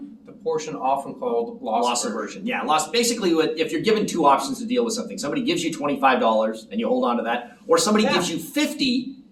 The portion often called loss aversion. Yeah, loss. Basically, if you're given two options to deal with something, somebody gives you $25 and you hold on to that, or somebody gives you $50,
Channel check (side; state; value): both; identical; correlation 1.00